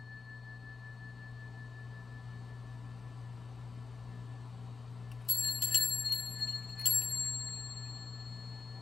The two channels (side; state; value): right; quieter; 4.7 dB